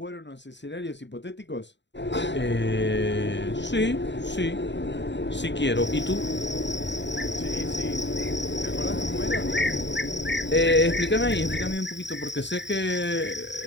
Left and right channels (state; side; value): late; right; 0.52 ms